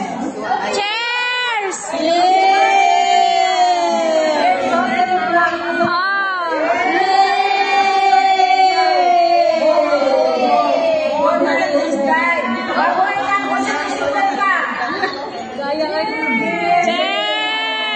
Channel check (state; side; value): identical; both; correlation 1.00